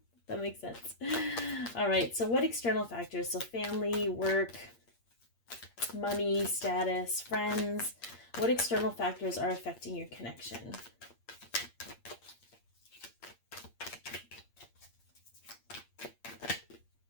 That makes sense. All right, so what external factors? So family, work, money, status, friends. What external factors are affecting your connection?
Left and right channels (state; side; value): late; right; 8.6 ms